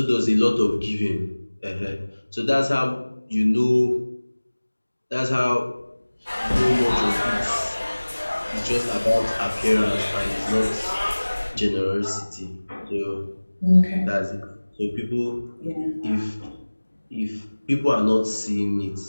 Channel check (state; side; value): inverted; both; correlation -1.00